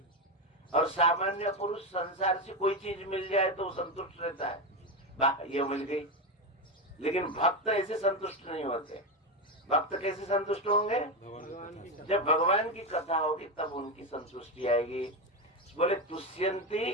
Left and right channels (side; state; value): both; normal; correlation 0.13